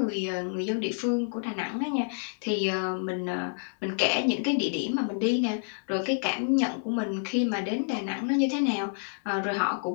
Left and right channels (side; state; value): right; silent; digital silence